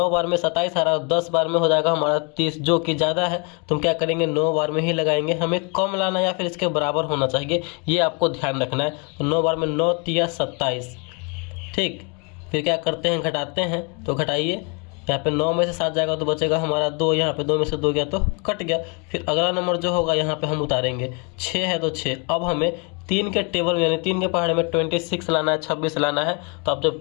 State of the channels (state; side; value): quieter; right; 33.4 dB